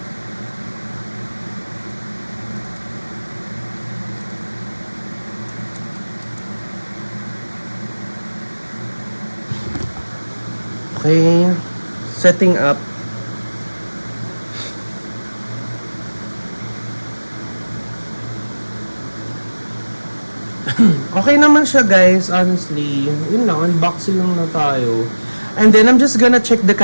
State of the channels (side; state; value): both; inverted; correlation -1.00